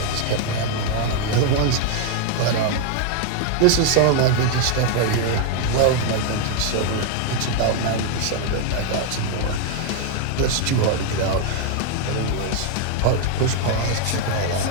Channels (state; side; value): different; both; correlation 0.00